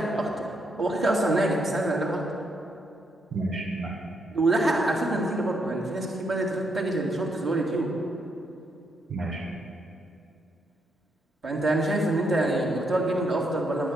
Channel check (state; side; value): normal; both; correlation 0.77